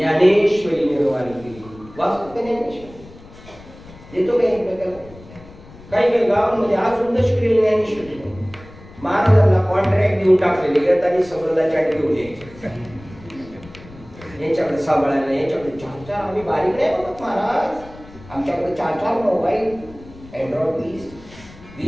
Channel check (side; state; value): left; noise; rumble, 20 dB below the sound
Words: निर्माण केली. वाचतो ज्ञानेश्वरी देतो काही काही काही गावांमध्ये अजून दशकरी ज्ञानेश्वरी महाराजांना कॉन्ट्रॅक्ट देऊन टाकलेले येतानी सगळं चाट घेऊन यायचे. यांच्याकडे सांभाळायला यांच्याकडे 4-4 आम्ही बारीक नाही बघत महाराज. आमच्याकडे 4-4 मोबाईल अँड्रॉइड